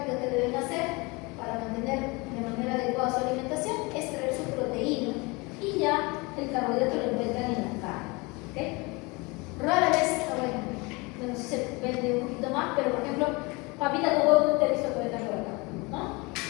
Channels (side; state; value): right; quieter; 26.3 dB